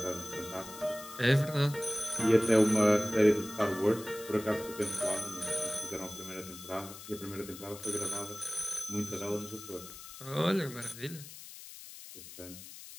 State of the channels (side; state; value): left; noise; hiss, 14 dB below the sound